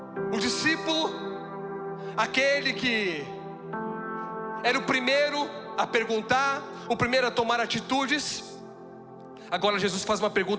o discípulo, aquele que era o primeiro a perguntar, o primeiro a tomar atitudes, agora Jesus faz uma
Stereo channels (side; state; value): both; identical; correlation 1.00